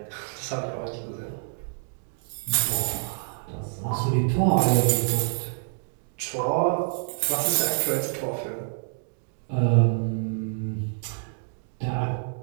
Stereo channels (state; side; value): silent; left; digital silence